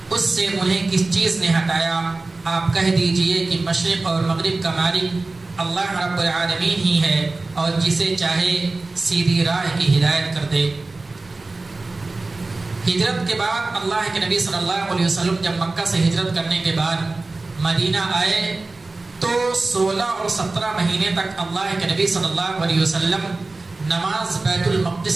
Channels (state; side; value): quieter; left; 3.4 dB